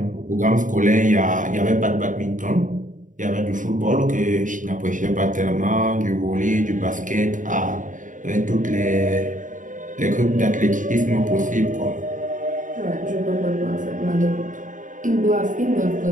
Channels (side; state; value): left; late; 0.38 ms